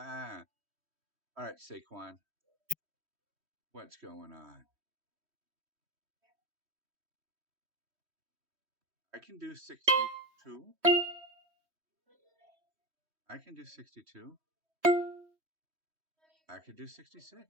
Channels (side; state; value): left; late; 3.1 ms